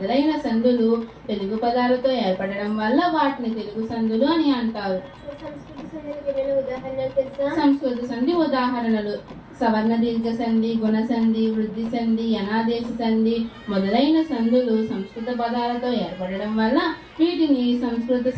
సందులు తెలుగు పదాలతో ఏర్పడడం వల్ల వాటిని తెలుగు సందులు అని అంటారు. సంస్కృత సంధి ఉదాహరణలు: సవర్ణ దీర్ఘ సంధి, గుణ సంధి, వృద్ధి సంధి, అనాదేశ సంధి మొదలైన సందులు సంస్కృత పదాలతో ఏర్పడడం వల్ల వీటిని సంస్కృత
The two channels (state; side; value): identical; both; correlation 1.00